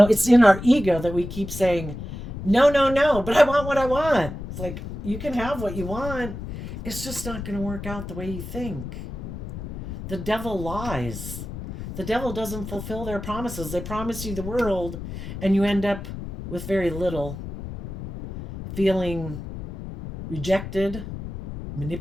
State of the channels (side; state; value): left; noise; rumble, 9 dB below the sound